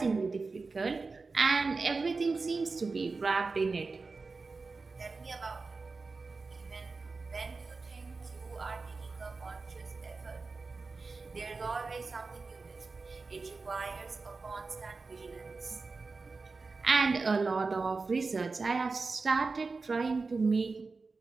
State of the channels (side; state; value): left; quieter; 4.1 dB